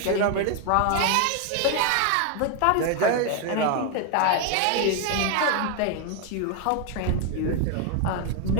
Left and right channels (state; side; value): different; both; correlation 0.01